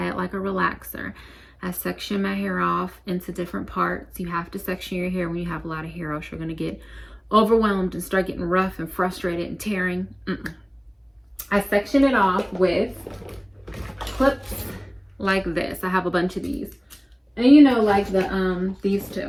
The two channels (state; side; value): identical; both; correlation 1.00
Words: it like a relaxer. I section my hair off into different parts. You have to section your hair when you have a lot of hair, else you're gonna get overwhelmed and start getting rough and frustrated and tearing. I section it off with clips like this. I have a bunch of these, and you know, like these